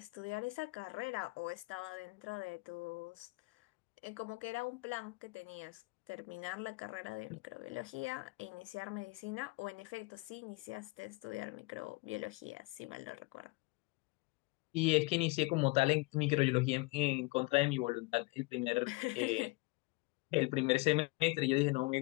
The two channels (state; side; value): quieter; right; 24.4 dB